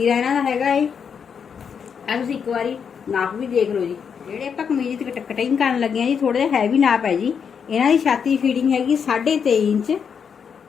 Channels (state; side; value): quieter; right; 6.9 dB